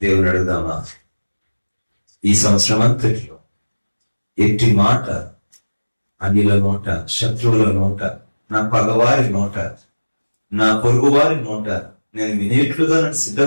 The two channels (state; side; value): inverted; both; correlation -1.00